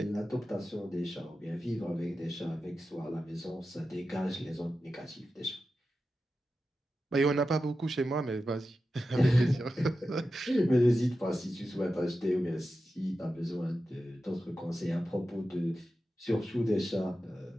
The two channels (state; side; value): normal; both; correlation 0.92